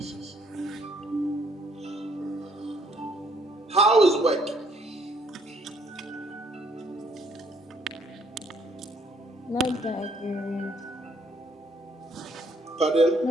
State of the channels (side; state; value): both; normal; correlation 0.67